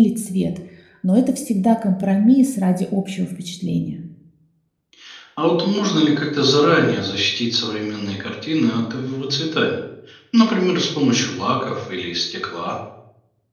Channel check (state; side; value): identical; both; correlation 1.00